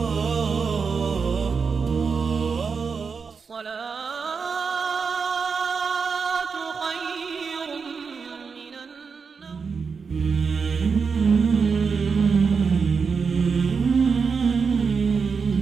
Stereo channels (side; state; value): left; quieter; 5.4 dB